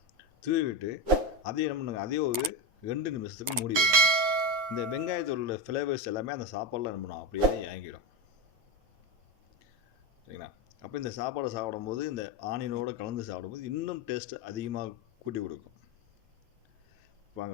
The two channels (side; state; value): left; late; 9.5 ms